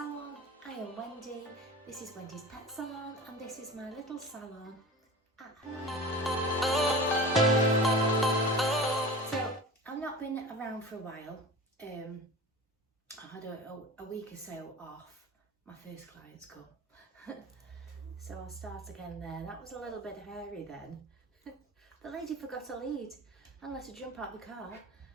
I am Wendy, this is Wendy's Pet Salon and this is my little salon at home. So I've not been around for a while. I had a week or so off. My first clients come. So I'll start again there. That was a little bit hairy then. The lady forgot to lead and let her jump out the car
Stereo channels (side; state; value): both; normal; correlation 0.35